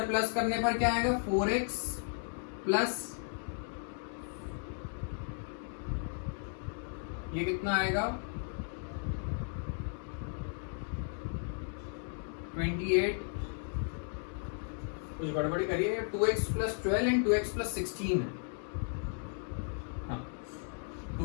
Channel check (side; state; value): right; silent; 54 dB below the other